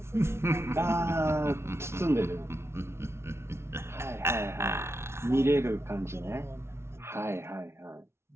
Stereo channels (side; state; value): left; late; 0.12 ms